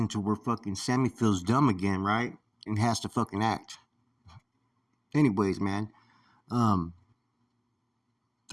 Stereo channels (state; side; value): identical; both; correlation 1.00